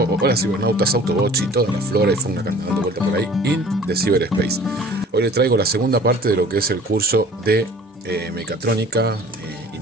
hola cibernautas, Autobots y toda la flora y fauna que andan dando vuelta por ahí in the cyberspace. Hoy les traigo la segunda parte de lo que es el curso de mecatrónica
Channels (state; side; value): normal; both; correlation 0.48